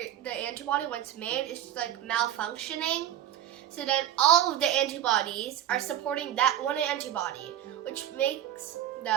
antibody, once made, is like malfunctioning. So then all of the antibodies are supporting that one antibody, which makes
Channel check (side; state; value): left; quieter; 11.3 dB